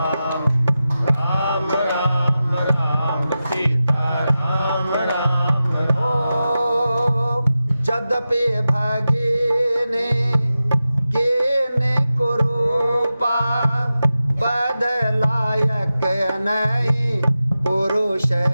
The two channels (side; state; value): both; inverted; correlation -0.93